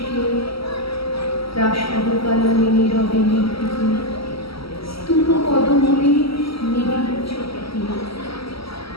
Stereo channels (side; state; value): right; late; 0.75 ms